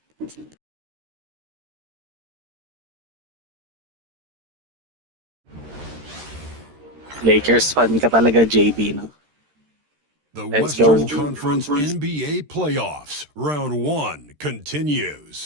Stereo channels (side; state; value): left; late; 13 ms